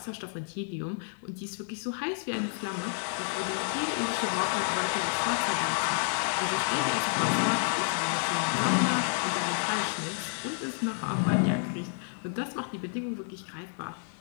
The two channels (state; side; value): silent; right; 58 dB below the other